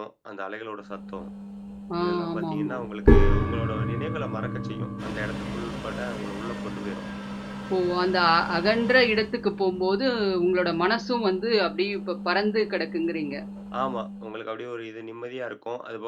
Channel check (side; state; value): both; identical; correlation 1.00